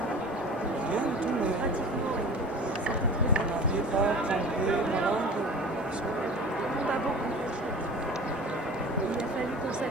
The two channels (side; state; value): both; normal; correlation 0.39